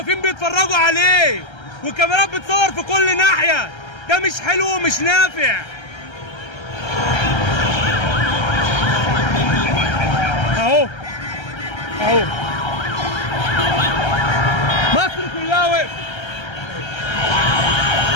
بيتفرجوا عليه، والكاميرات بتصور في كل ناحيه. ده مش حلو ومش نافع. اهو اهو مصر كلها وقفت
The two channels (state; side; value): late; right; 1.3 ms